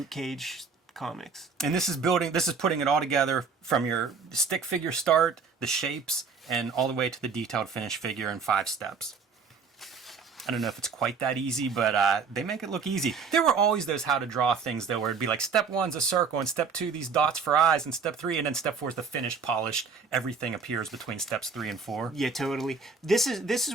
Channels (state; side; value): quieter; left; 5.3 dB